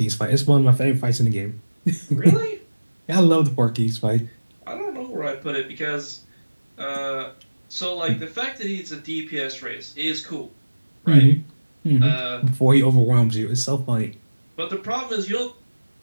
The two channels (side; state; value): both; inverted; correlation -1.00